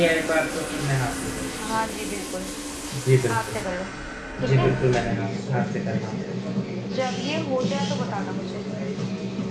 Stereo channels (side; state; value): both; identical; correlation 1.00